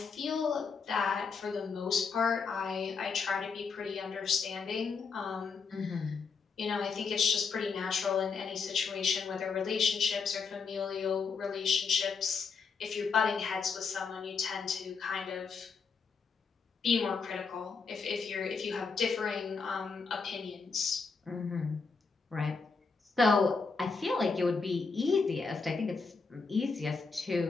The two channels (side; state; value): right; quieter; 5.0 dB